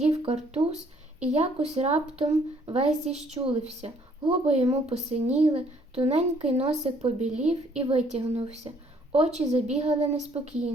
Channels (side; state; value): both; normal; correlation 0.63